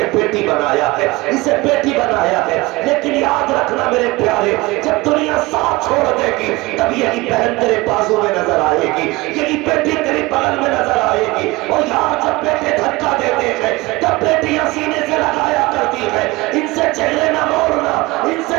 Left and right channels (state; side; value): quieter; left; 22.0 dB